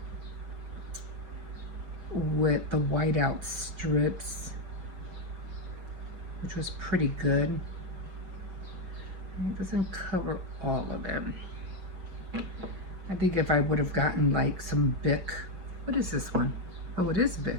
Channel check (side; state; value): left; late; 6.1 ms